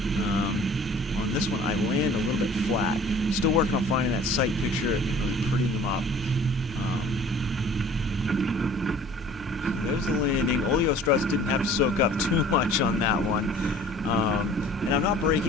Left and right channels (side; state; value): both; normal; correlation 0.48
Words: On this one, I land a little bit flat. Still working on finding that sight picture and really prettying them up. There's the landing. Oleo struts didn't have to soak up too much on that one. And I'm not